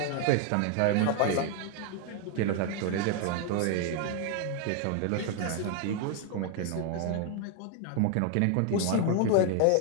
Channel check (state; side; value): different; both; correlation 0.00